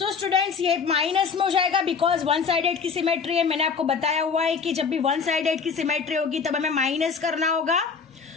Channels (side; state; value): right; quieter; 5.6 dB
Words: स्टूडेंट्स, ये माइनस में हो जाएगा बिकॉज वन साइडेड की सिमेट्री है। मैंने आपको बताया हुआ है कि जब भी वन साइडेड की सिमेट्री होगी तब हमें माइनस करना होगा।